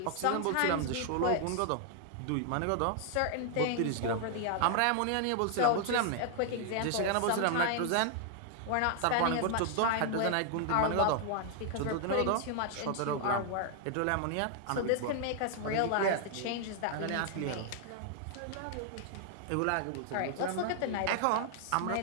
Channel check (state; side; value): different; both; correlation 0.00